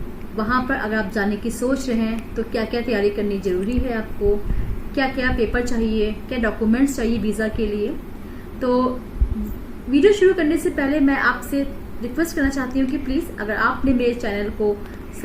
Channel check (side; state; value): both; identical; correlation 1.00